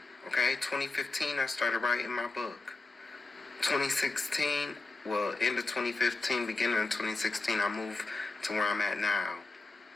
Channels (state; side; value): quieter; right; 3.4 dB